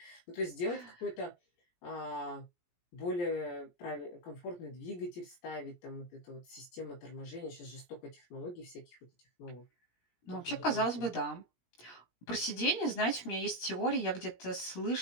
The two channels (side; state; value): right; late; 17 ms